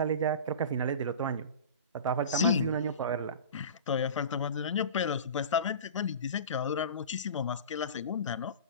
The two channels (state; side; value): inverted; both; correlation -0.33